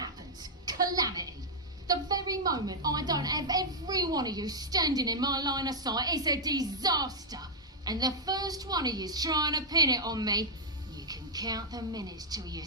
Calamity. The very moment I don't have every one of you standing in my line of sight, it's a disaster. And the first one of you's trying to pin it on me, you can count the minutes till you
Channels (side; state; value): both; normal; correlation -0.04